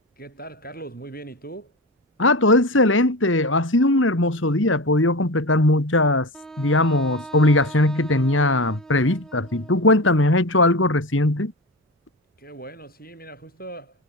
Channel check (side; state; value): both; normal; correlation 0.25